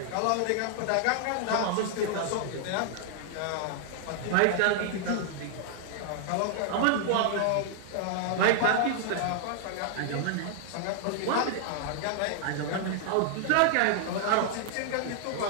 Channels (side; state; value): both; different; correlation 0.00